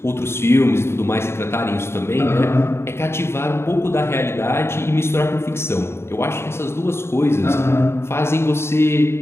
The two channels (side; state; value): right; late; 0.12 ms